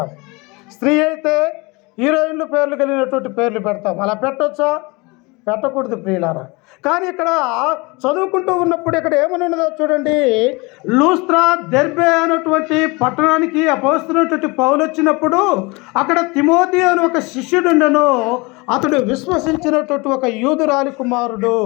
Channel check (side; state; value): right; quieter; 26.1 dB